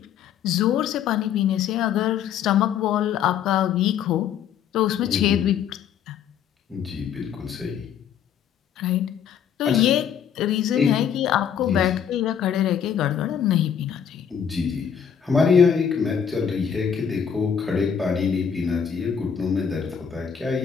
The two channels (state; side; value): quieter; right; 8.1 dB